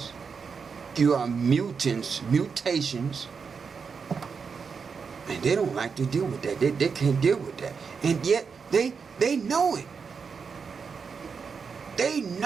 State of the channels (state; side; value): quieter; left; 5.7 dB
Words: You are mutations. And they don't like to deal with that. They can't deal with that. And yet they know it. They